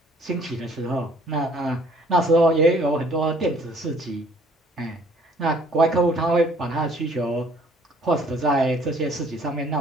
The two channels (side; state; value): both; normal; correlation 0.58